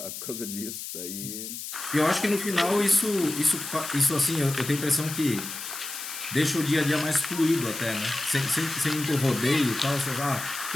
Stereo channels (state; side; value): noise; left; hiss, 8 dB below the sound